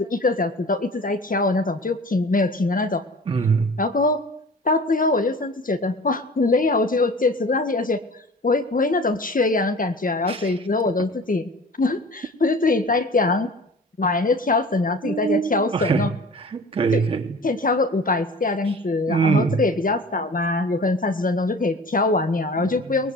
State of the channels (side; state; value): both; normal; correlation 0.41